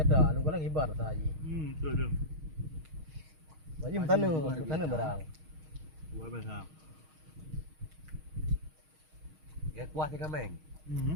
lu kalau kibar rasai. betul tu. Wajib tanah barang. Buat bahasa. Ya kuah tiga meng.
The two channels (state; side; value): late; left; 6.4 ms